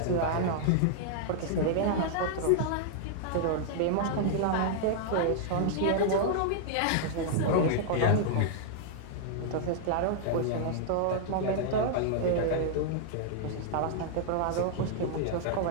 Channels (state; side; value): different; both; correlation -0.01